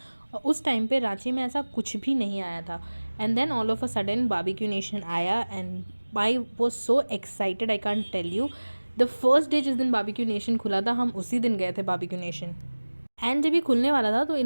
और उस टाइम पे रांची में ऐसा कुछ भी नहीं आया था। And then all of a sudden Barbeque Nation आया and I was so excited, I can't tell you. The first day जिस दिन बारबेक्यू नेशन खुला था, हम उसी दिन गए थे बारबेक्यू नेशन। एंड जब ये खुलने वाला था तो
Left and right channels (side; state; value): both; inverted; correlation -1.00